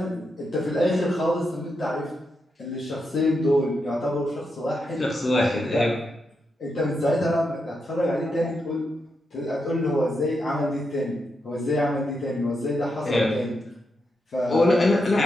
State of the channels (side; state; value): both; normal; correlation 0.84